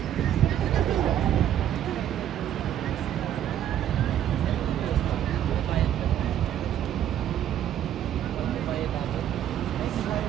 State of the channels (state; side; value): quieter; left; 10.7 dB